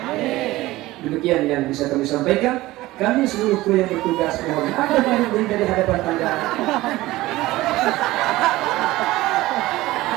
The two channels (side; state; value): left; quieter; 18.0 dB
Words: Demikian yang bisa kami sampaikan. Kami seluruh kru yang bertugas mohon ada banyak dari hadapan Anda.